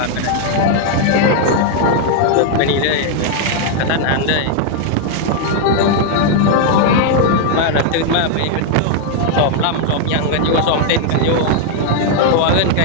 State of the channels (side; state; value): both; different; correlation 0.00